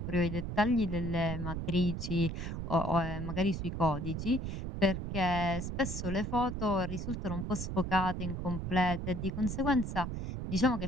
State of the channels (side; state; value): right; noise; rumble, 4 dB below the sound